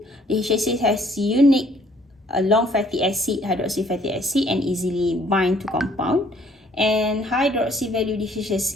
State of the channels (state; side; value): normal; both; correlation 0.61